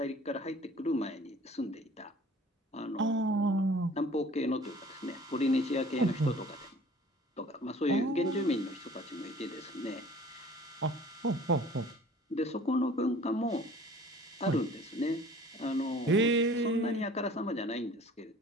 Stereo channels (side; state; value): both; normal; correlation 0.49